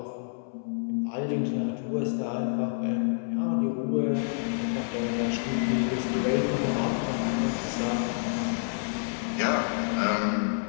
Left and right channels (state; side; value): silent; right; 59 dB below the other